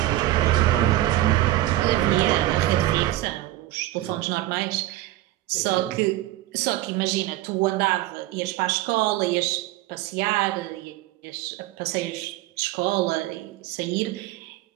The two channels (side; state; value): left; quieter; 15.8 dB